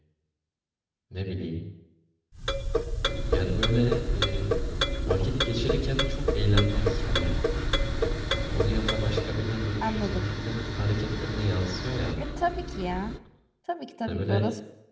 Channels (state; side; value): identical; both; correlation 1.00